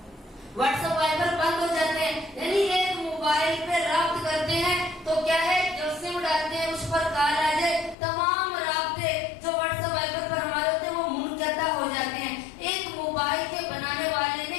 واٹس ایپ وائبر بند ہو جاتے ہیں. یعنی ایک موبائل پہ رابط کرتے ہیں تو کیا ہے, جو سم ڈالتے ہیں اس پر کال آ جائے, تمام رابطے جو واٹس ایپ وائبر پر ہمارے ہوتے ہیں وہ منقطع ہو جاتے ہیں. ایک موبائل کے بنانے والے نے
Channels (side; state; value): right; drops out; at 8.0 s